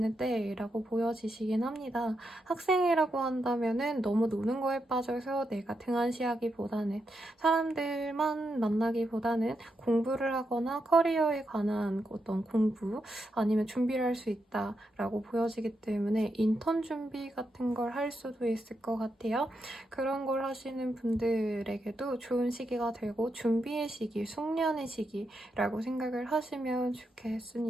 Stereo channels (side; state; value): both; normal; correlation 0.84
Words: 때라고 보여지시긴 합니다. 학생이라고 한다면 너무 노는 거에 빠져서 내가 등한시하기보다는 사람들만 만나기보다는 공부를 하거나 커리어에 관한 어떤 공부 아니면 준비를 할 수 있다라고 보여지기 때문에 인턴 준비 같은 걸 할 수도 있을 것 같아요. 그런 걸 하시는 분들에게도 좋은 시기가 되고 준비의 시기, 숙련의 시기라고 생각을 하시면